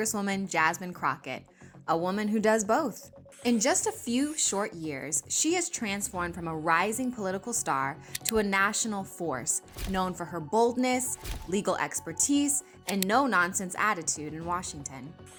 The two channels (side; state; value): both; identical; correlation 1.00